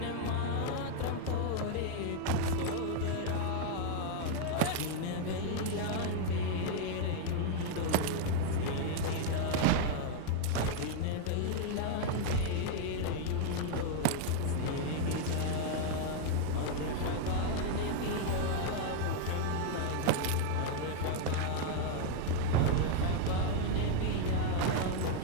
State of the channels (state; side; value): different; both; correlation 0.00